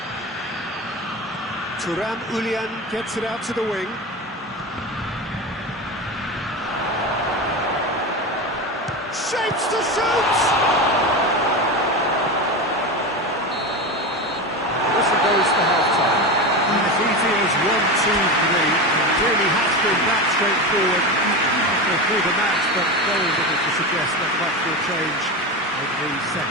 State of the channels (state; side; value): normal; both; correlation 0.22